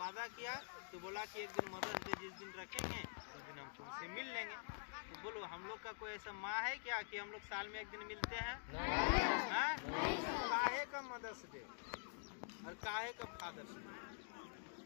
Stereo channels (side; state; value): right; silent; digital silence